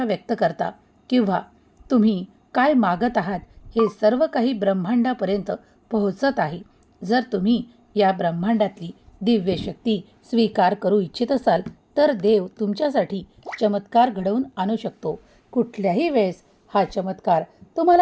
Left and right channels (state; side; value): identical; both; correlation 1.00